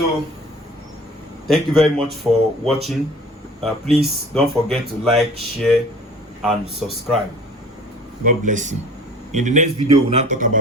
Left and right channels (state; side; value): normal; both; correlation 0.46